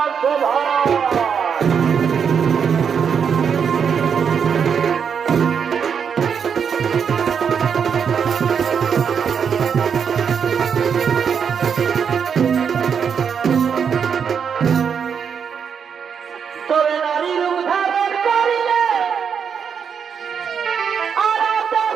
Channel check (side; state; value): left; quieter; 7.0 dB